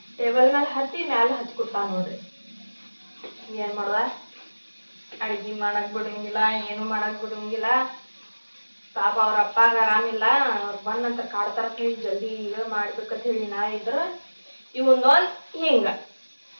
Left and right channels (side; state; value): both; inverted; correlation -1.00